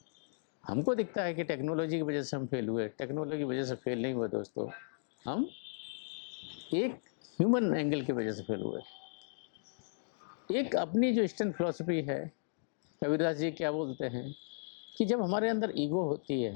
हमको दिखता है कि टेक्नोलॉजी की वजह से हम फेल हुए, टेक्नोलॉजी की वजह से फेल नहीं हुए दोस्तों, हम एक ह्यूमन एंगल की वजह से फेल हुए। एक अपनी जो ईस्टर्न फिलॉसफी है, कबीरदास जी क्या बोलते हैं कि जब हमारे अंदर ईगो होती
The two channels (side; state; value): right; silent; digital silence